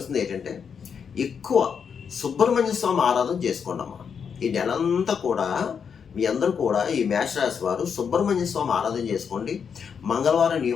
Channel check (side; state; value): right; quieter; 6.8 dB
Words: ఏంటంటే ఎక్కువ సుబ్రహ్మణ్య స్వామి ఆరాధన చేసుకోండి అమ్మా. ఈ నెలంతా కూడా మీ అందరూ కూడా ఈ మేషరాశి వారు సుబ్రహ్మణ్య స్వామి ఆరాధన చేసుకోండి. మంగళవారం